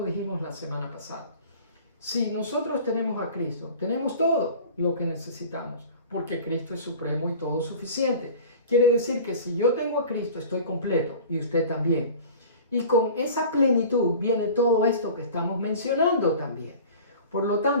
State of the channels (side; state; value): both; inverted; correlation -0.41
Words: dijimos la semana pasada. Si nosotros tenemos a Cristo, tenemos todo lo que necesitamos, porque Cristo es supremo y todo suficiente. Quiere decir que si yo tengo a Cristo, estoy completo, y usted también. Y con esa plenitud viene todo esto que estamos mencionando también. Por lo